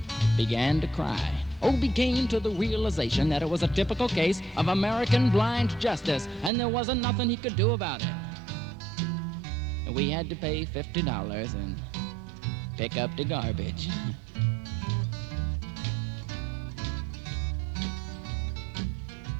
began to cry. Obie came to the realization that it was a typical case of American blind justice and there wasn't nothing he could do about it. We had to pay $50 and pick up the garbage.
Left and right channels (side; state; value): left; drops out; at 6.5 s